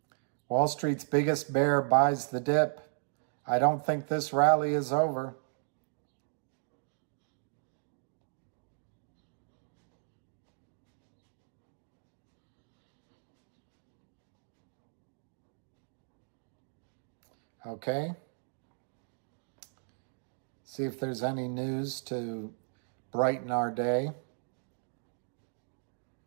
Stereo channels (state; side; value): silent; left; digital silence